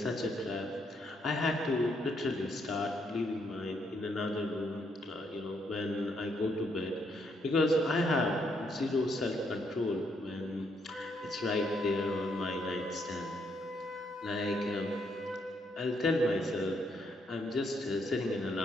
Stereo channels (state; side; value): normal; both; correlation 0.74